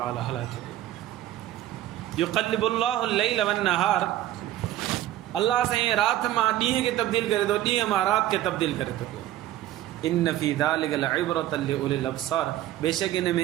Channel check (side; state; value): left; quieter; 13.6 dB